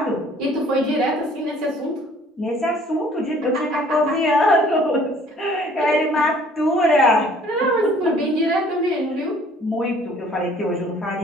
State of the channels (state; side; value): normal; both; correlation 0.55